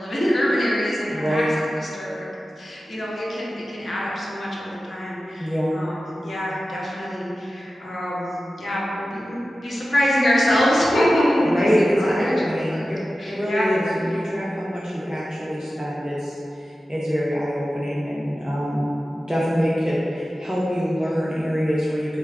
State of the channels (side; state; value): both; normal; correlation 0.94